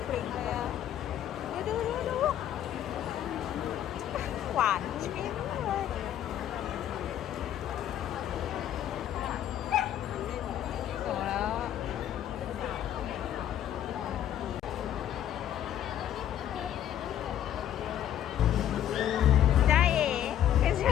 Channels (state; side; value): quieter; right; 11.0 dB